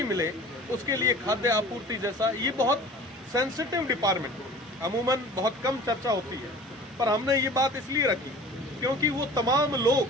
मिले, उसके लिए खाद्य आपूर्ति जैसा ये बहुत सेंसिटिव डिपार्टमेंट अमूमन बहुत कम चर्चा होती है, पर हमने ये बात इसलिए रखी क्योंकि वो तमाम लोग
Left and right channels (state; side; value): normal; both; correlation 0.43